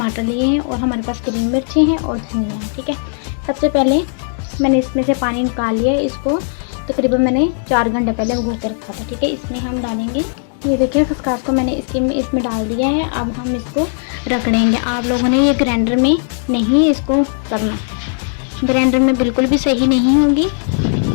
लिए हैं और हमारे पास ग्रीन मिर्ची हैं और धनिया है। ठीक है, सबसे पहले मैंने इसमें से पानी निकाल लिया है। इसको तकरीबन मैंने 4 घंटे पहले भिगो के रखा था। ठीक है, इसमें हम डालेंगे, ये देखिए खसखस को मैंने इसमें डाल दिया है। अब हम इसको रगड़ेंगे। आप लोगों ने ये ग्राइंडर में नहीं इसको करना, ग्राइंडर में बिल्कुल भी सही नहीं होगी।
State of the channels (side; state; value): right; silent; digital silence